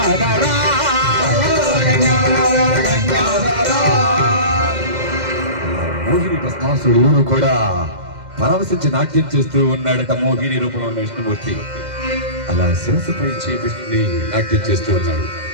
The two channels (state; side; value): late; left; 2.1 ms